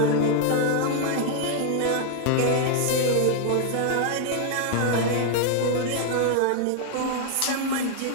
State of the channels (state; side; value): different; both; correlation 0.00